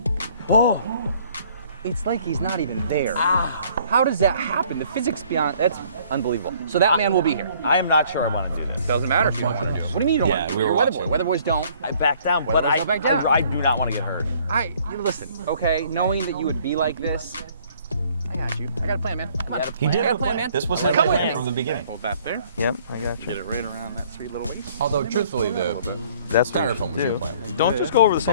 Oh, it's like he's not even there. How does that happen? The physics beyond, that's unbelievable. So that man will be here. I am not sure I want to do this. Doesn't matter if you want to do it. What do you mean you don't want to do it? we were You're a Weatherboy. watching. Weatherboys don't. I back down, but Weatherboys don't back down. I do not want to get hurt. Listen, okay, knowing that you would be like this, I got you. I got a plan, man. Come on. He did I got have a plan, man. This was Come his with plan me. from the beginning. Hold that there. Yep, I got you. Get it right around that sweet little waist. Although, truthfully, the That's styrofoam was your plan. Don't just go over the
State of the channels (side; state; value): both; inverted; correlation -0.59